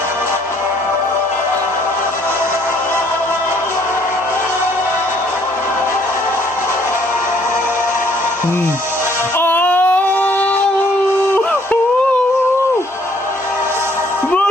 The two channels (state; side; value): normal; both; correlation 0.64